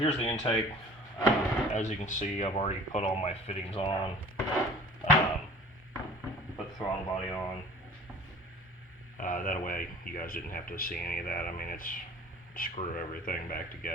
the intake. As you can see, I've already put all my fittings on. Put the throttle body on. That way you guys didn't have to see any of that. I mean, it's screw everything back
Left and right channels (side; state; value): both; normal; correlation 0.46